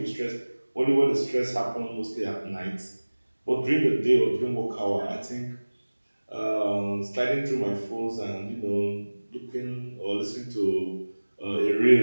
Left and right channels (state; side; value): inverted; both; correlation -1.00